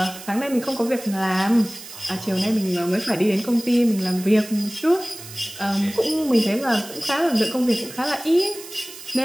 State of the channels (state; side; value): noise; right; hiss, 15 dB below the sound